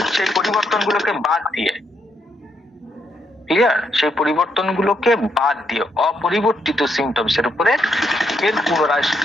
সেই পরিবর্তন গুলোকে বাদ দিয়ে, ক্লিয়ার, সেই পরিবর্তন গুলোকে বাদ দিয়ে অপরিবর্তিত সিমটমস এর উপরে এর পুনরায়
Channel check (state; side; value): normal; both; correlation 0.77